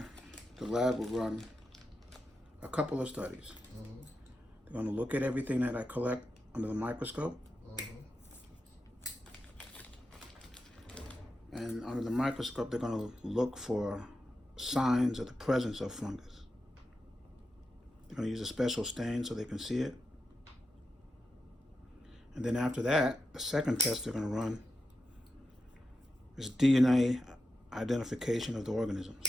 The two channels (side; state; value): both; normal; correlation 0.89